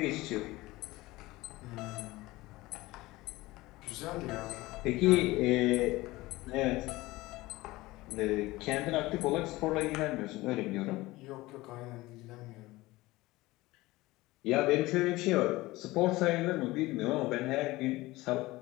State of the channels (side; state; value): right; quieter; 19.6 dB